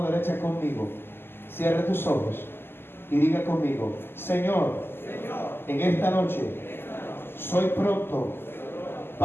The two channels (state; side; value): late; right; 0.11 ms